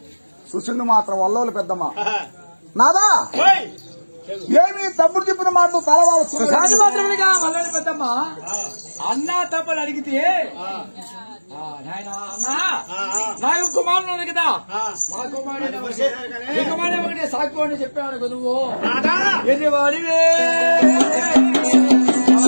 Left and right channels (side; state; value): both; inverted; correlation -1.00